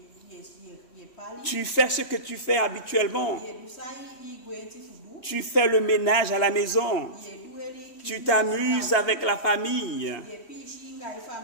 tu fais ce que tu fais habituellement. Tu fais le ménage à la maison. Tu t'amuses avec la famille,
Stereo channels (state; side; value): late; right; 3.1 ms